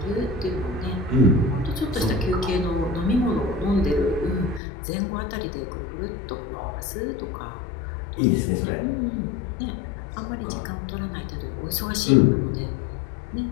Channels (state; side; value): drops out; right; at 4.6 s